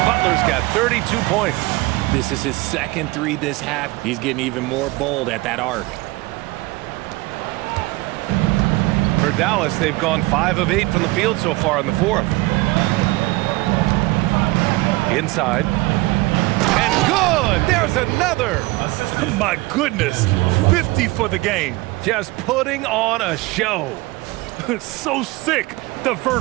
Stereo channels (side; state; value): left; quieter; 21.6 dB